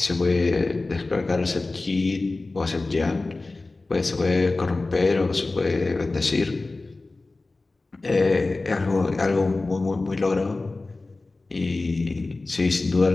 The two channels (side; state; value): right; quieter; 3.3 dB